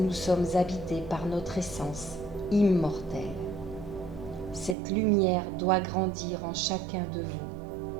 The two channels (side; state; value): left; drops out; at 4.8 s